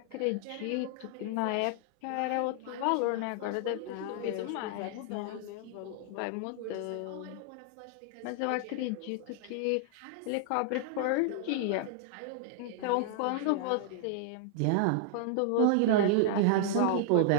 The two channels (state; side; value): different; both; correlation -0.01